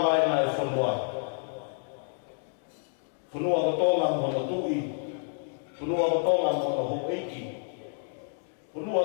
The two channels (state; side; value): silent; right; digital silence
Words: e whunua. Whanua ko tōnga mo no tui, Punua ko tonga mo no hong eiki. Punua